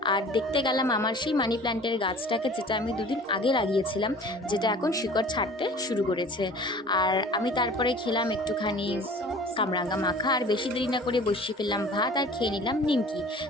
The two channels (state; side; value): normal; both; correlation 0.45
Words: আর দেখতে গেলাম আমার সেই মানি প্ল্যান্টের গাছটাকে, যেটা আমি 2 দিন আগে লাগিয়েছিলাম, যেটা এখন শিকড় ছাড়তে শুরু করেছে। আর আমি তারপরে খেলাম একটুখানি কামরাঙ্গা মাখা। আর বেশি দেরি না করে বসিয়ে ফেললাম ভাত আর খেয়ে নিলাম নিমকি,